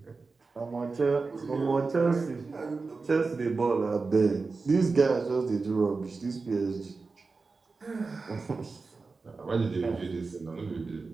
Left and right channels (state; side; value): quieter; left; 4.1 dB